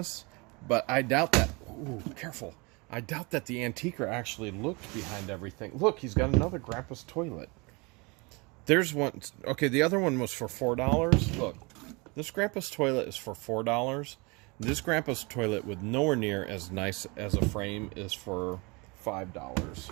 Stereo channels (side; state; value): left; quieter; 28.0 dB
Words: but I doubt that. Ooh, careful. I doubt that the antiquer actually looked behind everything. Look, he's got another Grandpa's Toilet. There's one. Okay, the other one was for $4. Look, this Grandpa's Toilet is for $4. This Grandpa's Toilet with nowhere near as nice as a frame is for